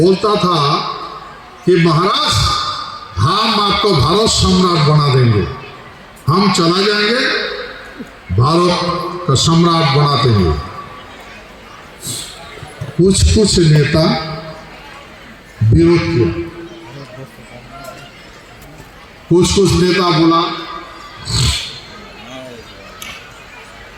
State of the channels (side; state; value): both; identical; correlation 1.00